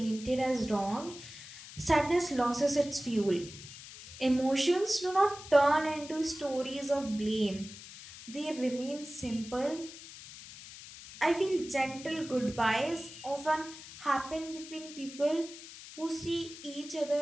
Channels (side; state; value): left; noise; hiss, 15 dB below the sound